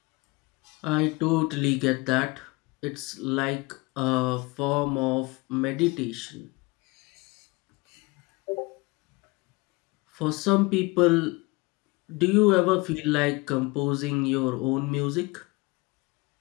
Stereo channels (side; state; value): right; quieter; 24.6 dB